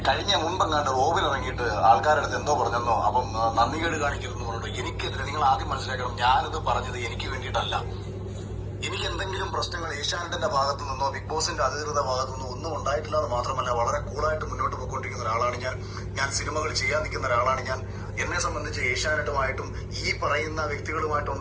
കഴിഞ്ഞ മുമ്പെങ്ങാണ്ട് റോബിൽ ഇറങ്ങിയിട്ട് ആൾക്കാരുടെ അടുത്ത് എന്തോ പറഞ്ഞെന്നോ, അപ്പം നന്ദികേട് കാണിക്കരുതെന്ന് പറഞ്ഞിട്ട് എനിക്കെതിരെ നിങ്ങൾ ആദ്യം മനസ്സിലാക്കണം, ഞാനിത് പറഞ്ഞത് എനിക്ക് വേണ്ടിയിട്ടല്ല. എനിക്ക് എന്തെങ്കിലും പ്രശ്നങ്ങൾ ഏഷ്യാനെറ്റിന്റെ ഭാഗത്തു നിന്നോ ബിഗ് ബോസിന്റെ അധികൃത ഭാഗത്തു നിന്നോ ഒന്നും ഉണ്ടായിട്ടില്ല എന്ന് മാത്രമല്ല, വളരെ കൂളായിട്ട് മുന്നോട്ട് പോയിക്കൊണ്ടിരിക്കുന്ന ഒരാളാണ് ഞാൻ സിനിമകൾ ചെയ്യാൻ നിൽക്കുന്ന ഒരാളാണ് ഞാൻ. എന്നെ സംബന്ധിച്ച് ഏഷ്യാനെറ്റുമായിട്ടും ഈ പറയുന്ന വ്യക്തികളുമായിട്ട്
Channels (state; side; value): identical; both; correlation 1.00